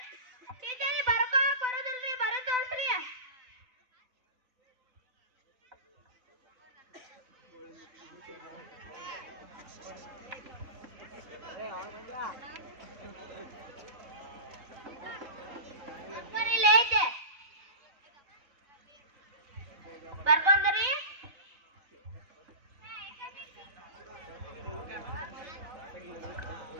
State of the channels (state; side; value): late; left; 4.0 ms